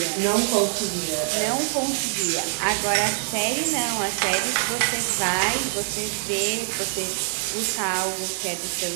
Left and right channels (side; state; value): left; silent; digital silence